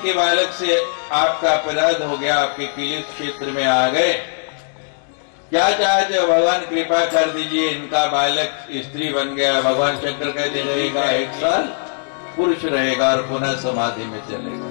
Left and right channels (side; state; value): right; silent; 66 dB below the other